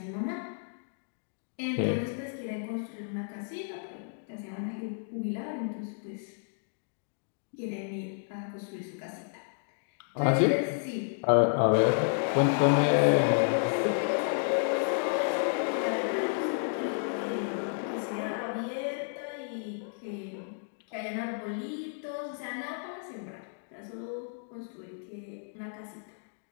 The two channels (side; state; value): right; silent; digital silence